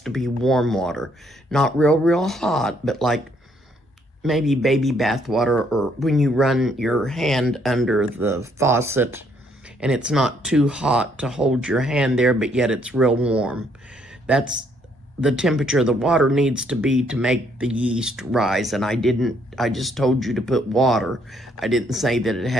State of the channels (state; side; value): normal; both; correlation 0.69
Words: to be warm water. Not real hot, but like maybe baby bath water, or when you run your hand under the faucet and it's not too hot to hold your hand there, but yet it's real warm. That's the temperature the water needs to be to make the yeast rise. And I just told you to put water. I didn't say that it